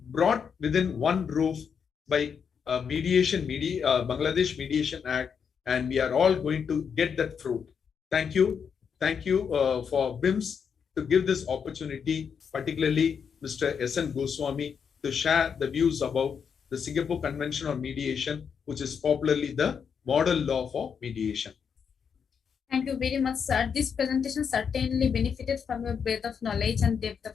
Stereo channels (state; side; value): quieter; right; 6.8 dB